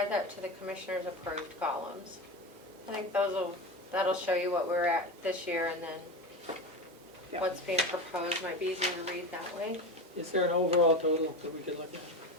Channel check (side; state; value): both; normal; correlation 0.23